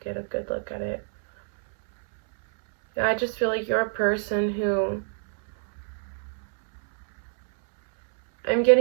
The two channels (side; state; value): left; silent; 61 dB below the other